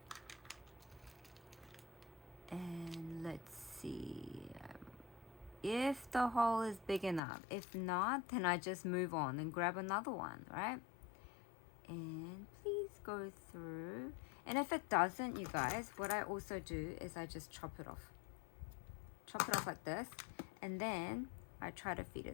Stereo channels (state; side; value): drops out; right; at 7.2 s